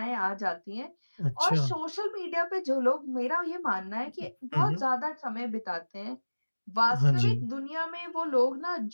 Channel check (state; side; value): inverted; both; correlation -1.00